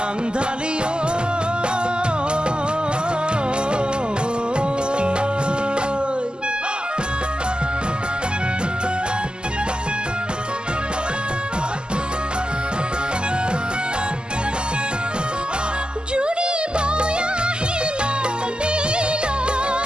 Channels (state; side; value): late; left; 0.048 ms